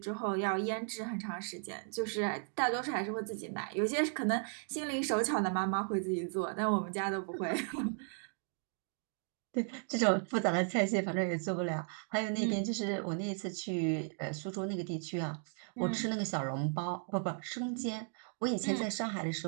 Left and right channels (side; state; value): left; silent; 54 dB below the other